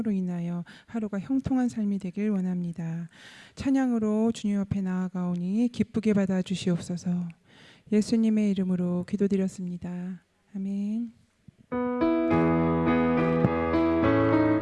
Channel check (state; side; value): identical; both; correlation 1.00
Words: 인하여 하루가 형통한 삶이 되길 원합니다. 찬양으로 주님 앞에 나아가오니 기쁘게 받아 주시옵소서. 예수님의 이름으로 기도드렸습니다. 아멘.